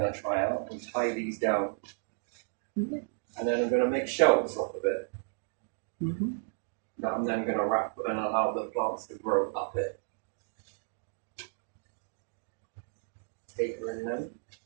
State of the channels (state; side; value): silent; left; digital silence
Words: to try out and tie these down. Yeah. And then I'm going to make shelves off of it. That I'm then going to wrap and allow the plants to grow up it. Tapering them